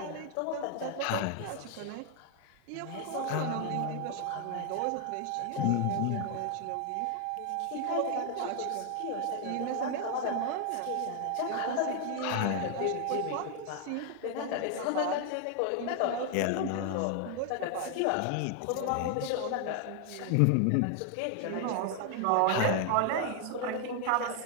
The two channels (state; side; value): different; both; correlation 0.00